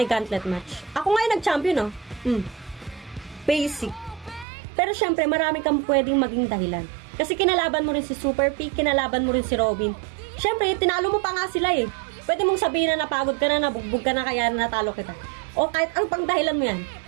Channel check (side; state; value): left; drops out; at 4.5 s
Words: Gauntlet match. Ako nga yung nag-champion, no? Basic. Pero syempre, marami kang pwedeng maging dahilan. Kasi kinalaban mo rin si Super P, kinalaban mo rin si Robin. Syempre, tinalo mo pa nga sila eh. Pwede mong sabihin na napagod ka na, nabugbog ka na, kaya natalo kita. O kahit ang pang dahilan mo yan.